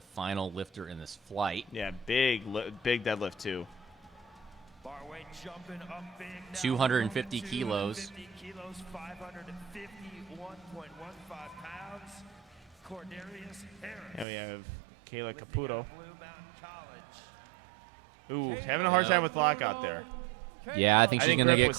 final lifter in this flight. Yeah, big deadlift too. 250 kilos. 551.15 pounds. Cordarius Harris. And we have Kayla Caputo. Ooh, having a hard time with lockout there. Yeah, I think she's going to grip get was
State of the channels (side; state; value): left; drops out; at 14.2 s